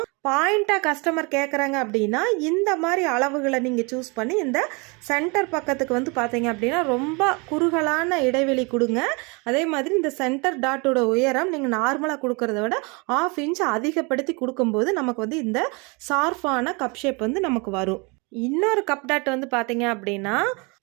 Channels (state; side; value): quieter; left; 29.7 dB